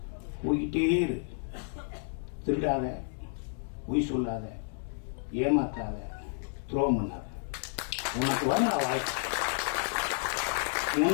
போய்கிட்டே இரு. திருடாத, பொய் சொல்லாத, ஏமாத்தாத, துரோகம் பண்ணாத. உனக்கு வரும் வாய்ப்பு,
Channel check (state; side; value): silent; right; 57 dB below the other